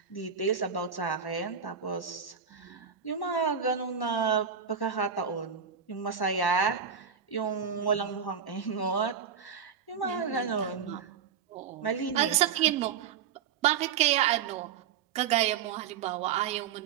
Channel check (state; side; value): quieter; left; 7.2 dB